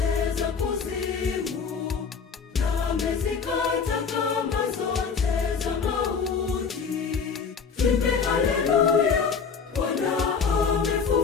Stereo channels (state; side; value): quieter; right; 5.8 dB